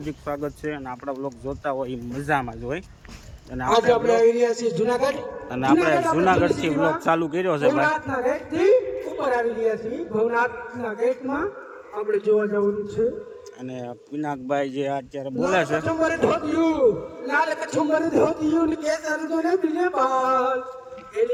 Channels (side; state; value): both; identical; correlation 1.00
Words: સ્વાગત છે. અને આપણા વ્લોગ જોતા હોય એ મજામાં જ હોય. અને આપણે આવી રહ્યા છીએ જુનાગઢ. અને આપણે જુનાગઢથી વ્લોગ ચાલુ કર્યો છે ભાઈ. ભવનાથના ગેટથી ઉપર આવી રહ્યા છીએ. ભવનાથના ગેટમાં આપણે જોવા જવાનું છે. અને પિનાકભાઈ જે અત્યારે બોલે છે, કચુંબર ધોતિયું, લાલ કચુંબર ધોતિયું ને કેસર જોને બિલે બાલ,